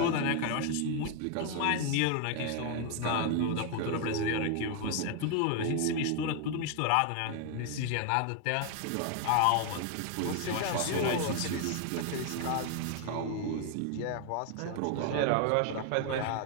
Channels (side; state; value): both; different; correlation 0.01